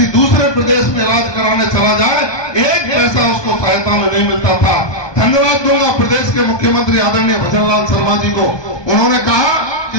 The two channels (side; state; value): right; late; 1.2 ms